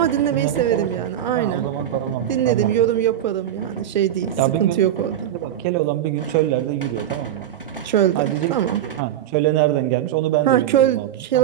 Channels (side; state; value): left; quieter; 11.3 dB